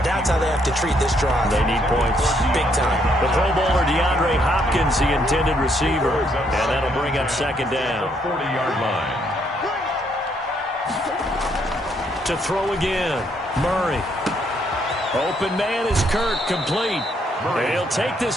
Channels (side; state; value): both; normal; correlation 0.72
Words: That's how they have to treat this drive. They need points. Big time. The Pro Bowler DeAndre Hopkins, the intended receiver. And that'll bring up second down. 40-yard line. To throw again. Murray. Open man is Kirk, complete. He'll take this